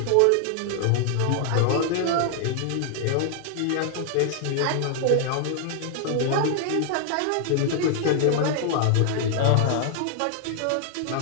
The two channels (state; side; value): different; both; correlation 0.00